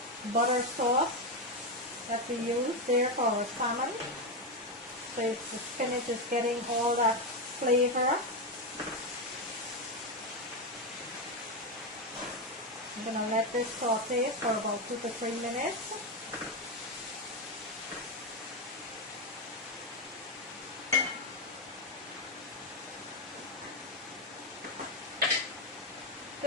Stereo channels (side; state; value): both; normal; correlation 0.08